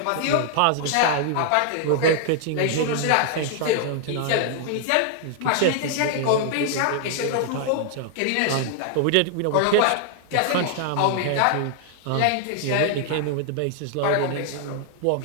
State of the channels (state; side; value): different; both; correlation 0.00